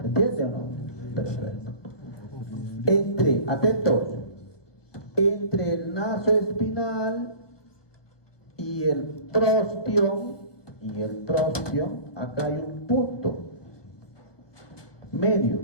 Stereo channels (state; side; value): late; right; 1.2 ms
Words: entiende o no? Perfecto. Atentos, entre el nasoespinal y el prostión, acá hay un punto medio,